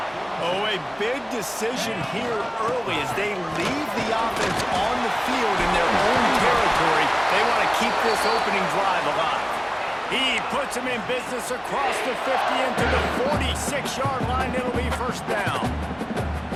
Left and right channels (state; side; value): identical; both; correlation 1.00